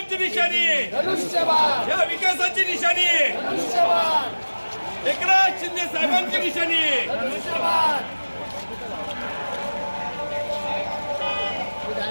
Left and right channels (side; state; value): both; inverted; correlation -1.00